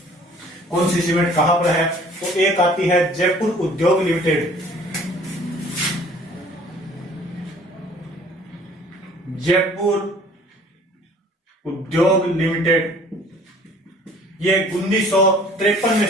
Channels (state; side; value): normal; both; correlation 0.52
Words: कौन सी सीमेंट कहां पर है? तो एक आती है जयपुर उद्योग लिमिटेड। जयपुर उद्योग लिमिटेड, ये 1953 में